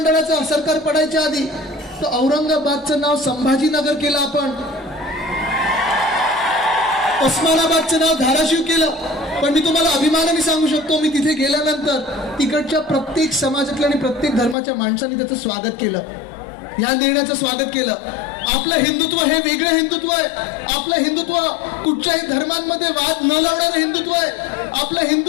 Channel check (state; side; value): drops out; right; at 14.6 s